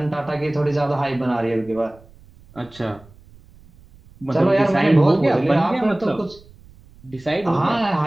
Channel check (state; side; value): noise; right; rumble, 25 dB below the sound